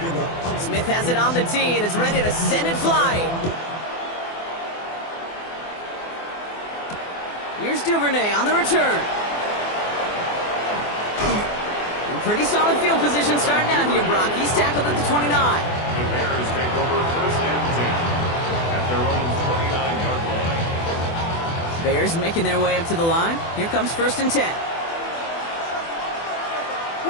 Smith has it on the tee and is ready to send it flying. Here's Duvernay on the return. Pretty solid field position starting out here, Brock. He's tackled at the 29. The Bears take over 1st and 10 at their own 29-yard line. Bears making their way up to the line. Here comes 1st and 10.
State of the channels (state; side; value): late; right; 24 ms